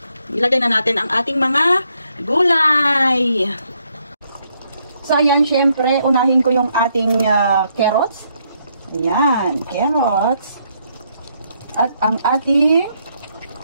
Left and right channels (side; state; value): both; inverted; correlation -0.74